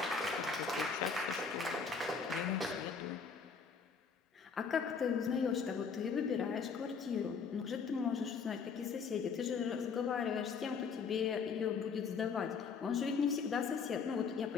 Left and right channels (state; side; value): quieter; right; 5.6 dB